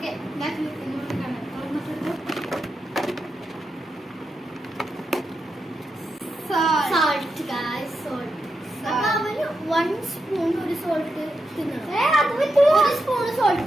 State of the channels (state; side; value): normal; both; correlation 0.86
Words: ഞാൻ ഇങ്ങോട്ട് കാണാം. Salt guys, salt. അപ്പൊ അവന് 1 സ്പൂൺ ഒരു സോൾട്ട് തിന്നണം. 1 സ്പൂൺ സോൾട്ട്